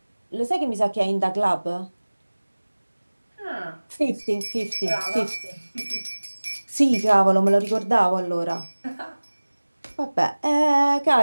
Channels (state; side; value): inverted; both; correlation -1.00